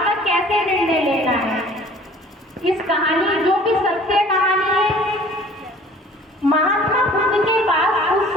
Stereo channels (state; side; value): normal; both; correlation 0.50